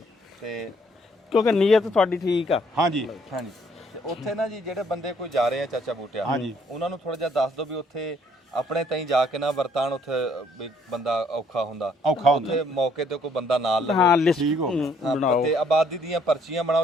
ਤੇ ਕਿਉਂਕਿ ਨੀਅਤ ਤੁਹਾਡੀ ਠੀਕ ਆ। ਹਾਂਜੀ ਹਾਂਜੀ ਤੇ ਉੱਥੇ ਨਾ ਜੀ ਜਿਹੜੇ ਬੰਦੇ ਕੋਈ ਜਾ ਰਹੇ ਆ ਚਾਚਾ ਬੂਟਿਆ, ਉਹਨਾਂ ਨੂੰ ਥੋੜਾ ਜਿਹਾ ਦੱਸ ਦਿਓ ਵੀ ਉੱਥੇ ਆਪਣੇ ਤਾਈਂ ਜਾ ਕੇ ਨਾ ਵਰਤਾਨ। ਉੱਥੇ ਵੀ ਬੰਦਾ ਔਖਾ ਹੁੰਦਾ, ਉੱਥੇ ਮੌਕੇ ਤੇ ਕੋਈ ਬੰਦਾ ਨਾਲ ਲਵੇ। ਹਾਂ ਲਿਸਟ ਬਣਾਓ ਤੇ ਆਬਾਦੀ ਦੀਆਂ ਪਰਚੀਆਂ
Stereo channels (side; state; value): both; normal; correlation 0.65